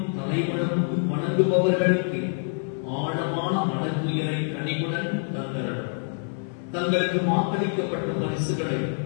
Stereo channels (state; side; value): silent; right; 61 dB below the other